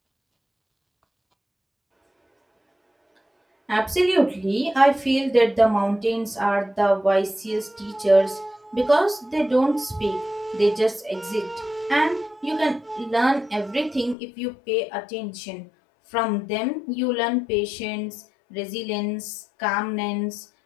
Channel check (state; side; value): drops out; right; at 14.2 s